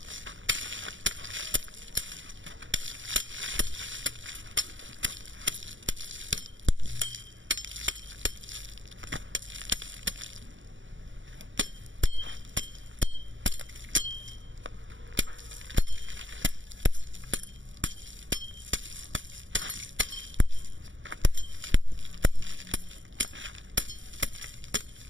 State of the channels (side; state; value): left; late; 0.56 ms